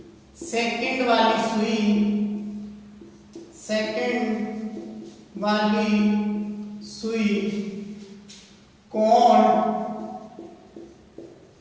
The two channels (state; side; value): identical; both; correlation 1.00